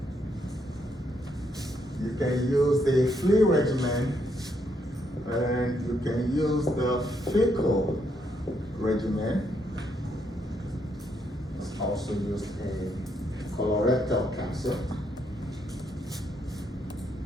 You can use the flea regimen, and you can use the fecal regimen. It's also used in colorectal cancer.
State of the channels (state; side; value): normal; both; correlation 0.75